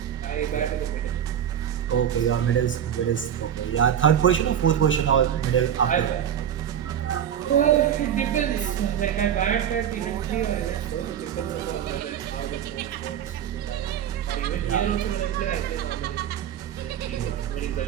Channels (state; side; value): quieter; left; 9.5 dB